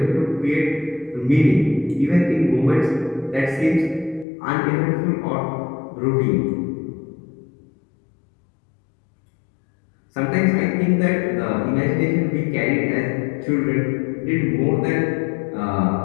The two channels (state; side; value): drops out; right; at 4.2 s